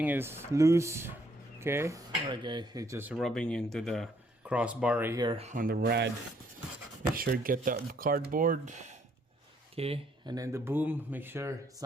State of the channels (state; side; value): normal; both; correlation 0.68